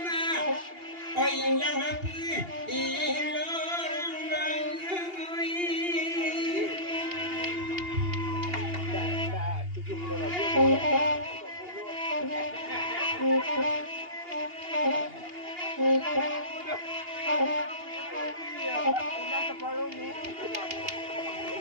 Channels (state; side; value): late; left; 2.8 ms